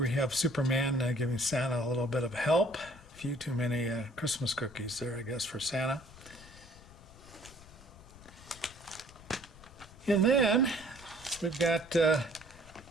we have Superman giving Santa a little bit of help. A few too many Christmas cookies there, I guess, for Santa. And then we've got a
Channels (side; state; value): left; noise; rumble, 21 dB below the sound